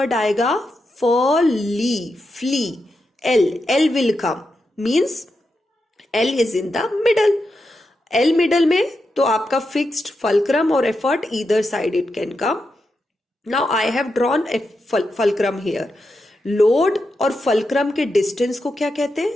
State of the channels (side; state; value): both; normal; correlation 0.87